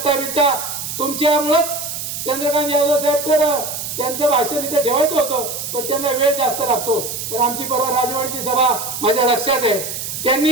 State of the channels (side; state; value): right; noise; hiss, 6 dB below the sound